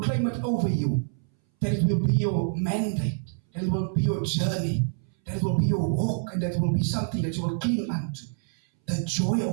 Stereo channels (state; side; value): silent; left; 61 dB below the other